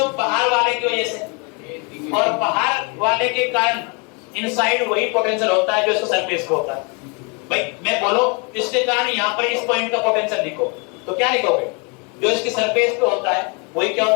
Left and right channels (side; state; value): right; quieter; 33.0 dB